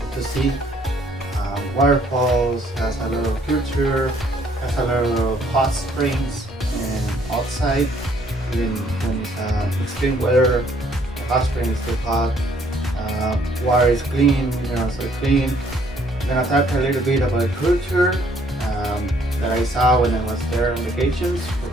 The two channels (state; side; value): normal; both; correlation 0.64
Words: to see. Waterfalls, has a lot of culture, has a lot of hot springs and outside. Even when it's extreme weather, the hot spring is too hot. Water is clean, so clean. I'm gonna talk a little bit about culture that I saw when I was there on vacations